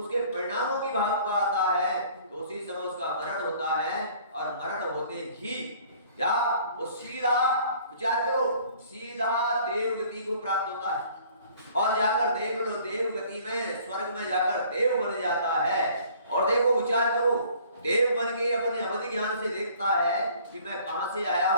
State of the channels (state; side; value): inverted; both; correlation -0.54